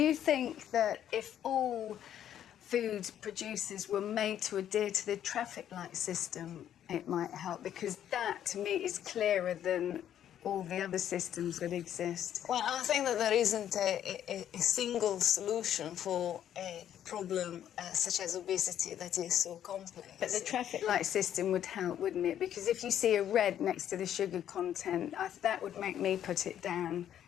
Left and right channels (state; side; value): quieter; right; 10.4 dB